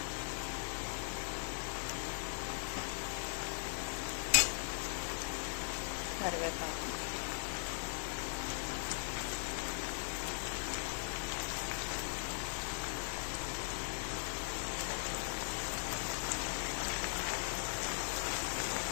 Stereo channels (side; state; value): right; silent; digital silence